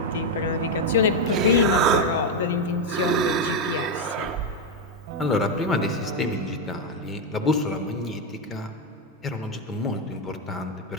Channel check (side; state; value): both; normal; correlation 0.04